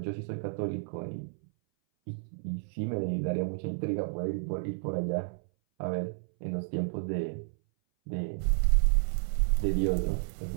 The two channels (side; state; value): left; silent; 57 dB below the other